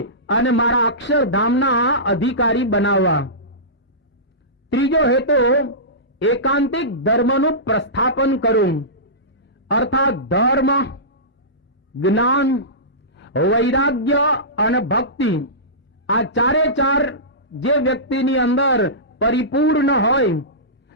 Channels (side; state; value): both; normal; correlation -0.19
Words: અને મારા અક્ષરધામના અધિકારી બનાવવા. ત્રીજો હેતુ એકાંતિક ધર્મનું પ્રસ્થાપન કરું. અર્થાત ધર્મ, જ્ઞાન, વૈરાગ્ય અને ભક્તિ, આ ચારે ચાર જે વ્યક્તિની અંદર પરિપૂર્ણ હોય,